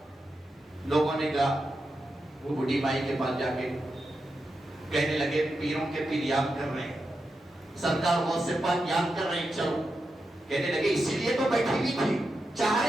لوگوں نے کہا وہ بوڑھی مائی کے پاس جا کے کہنے لگے پیروں کے پیر یاد کر رہے ہیں، سرکار غوث پاک یاد کر رہے ہیں، چلو۔ کہنے لگے اسی لیے تو بیٹھی ہوئی تھی، چاہ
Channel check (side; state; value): both; normal; correlation 0.88